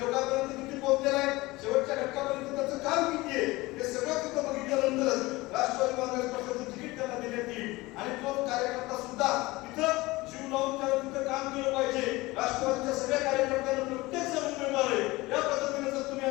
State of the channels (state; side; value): quieter; right; 20.9 dB